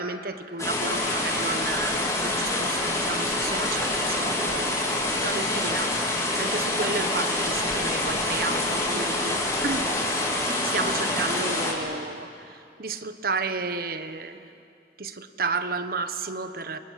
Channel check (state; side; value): normal; both; correlation 0.12